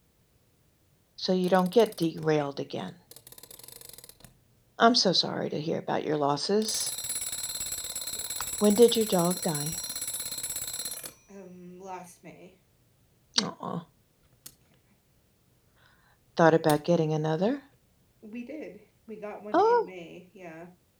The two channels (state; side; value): identical; both; correlation 1.00